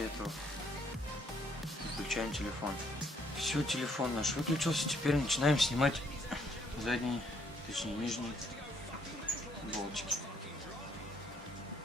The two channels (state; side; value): normal; both; correlation 0.67